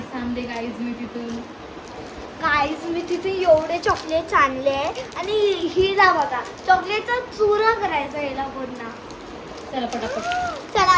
आणले गाईज मी तिथून. गाईज मी तिथे एवढे चॉकलेट्स आणले आणि हिला बघा चॉकलेटचा चुरा करायचा हिला पूर्ण. चला पटापट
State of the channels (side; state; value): both; identical; correlation 1.00